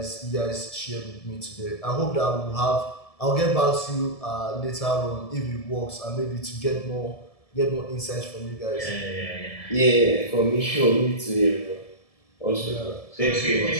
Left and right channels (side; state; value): right; late; 1.7 ms